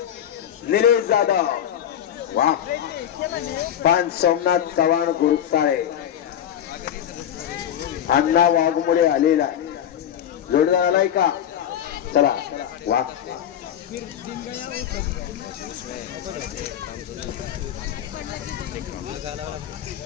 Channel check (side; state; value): right; quieter; 10.1 dB